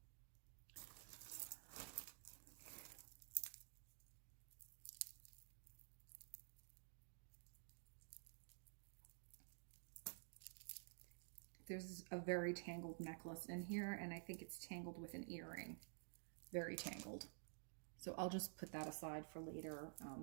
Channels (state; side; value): silent; left; digital silence